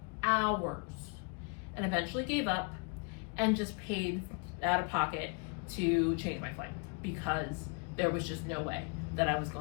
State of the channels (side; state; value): right; quieter; 35.0 dB